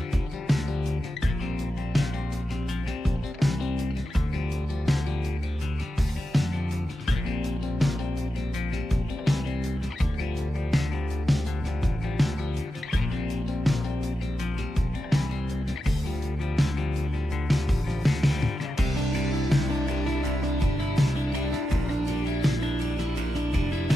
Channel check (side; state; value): both; normal; correlation 0.90